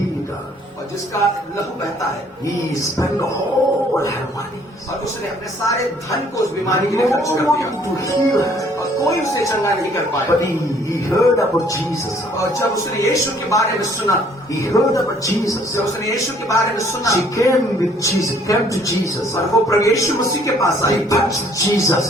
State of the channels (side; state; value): both; normal; correlation 0.60